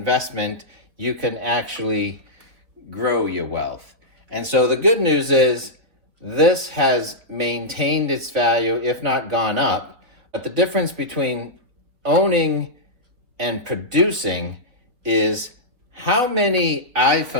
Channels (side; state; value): left; late; 3.9 ms